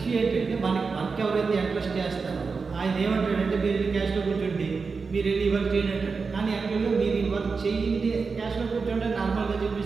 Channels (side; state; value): left; quieter; 4.8 dB